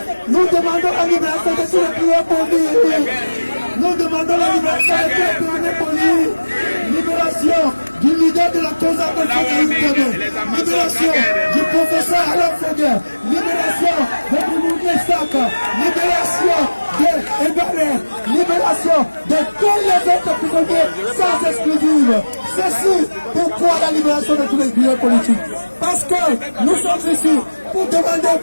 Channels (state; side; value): inverted; both; correlation -1.00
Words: Nous demandons la libération de tous les prisonniers politiques. Nous demandons la libération de tous les prisonniers politiques. Libération du leader de la cause de libération du professeur Alain Foguet, libération de Moumouni Sak, libération de Ebaré, libération de tous les autres prisonniers sans exclusive. Ceci, pourquoi la libération de tous les prisonniers politiques? Parce que nous sommes ici pour demander au